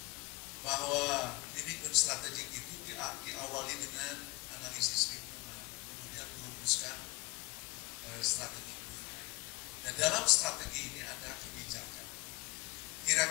bahwa manajemen strategik itu diawali dengan analisis lingkungan, kemudian merumuskan strategi. Dan dalam strategi ini ada kebijakan.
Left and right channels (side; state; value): right; quieter; 23.4 dB